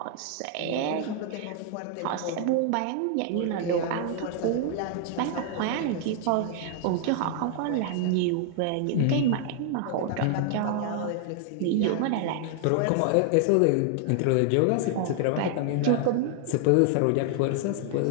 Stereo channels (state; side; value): different; both; correlation 0.00